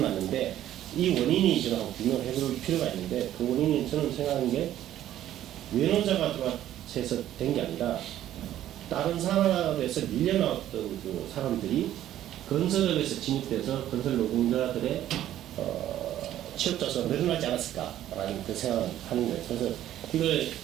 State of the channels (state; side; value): quieter; left; 12.4 dB